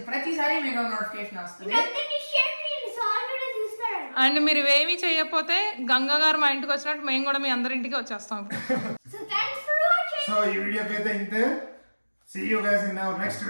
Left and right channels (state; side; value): inverted; both; correlation -1.00